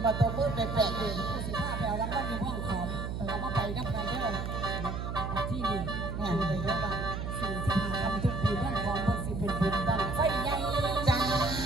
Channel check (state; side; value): noise; right; hum, 4 dB below the sound